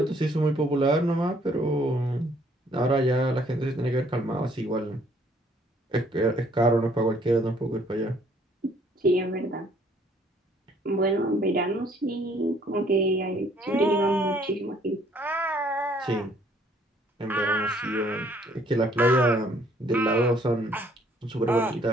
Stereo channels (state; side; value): normal; both; correlation 0.62